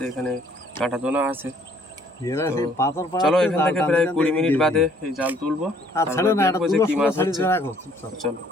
এখানে কাঁটা দোনা আছে। এরা সেই পাথর চলো পাড়াতে এখান জাল থেকে টানতে প্রায় টানতে 20 মিনিট এদিকে বাদে এই জাল তুলবো, আর তারপরে ছাড়ো না, দেখবো এটা যে কি মাছ ছাড়ি হচ্ছে। রাখো চুপচাপ। চলো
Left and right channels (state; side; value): normal; both; correlation 0.61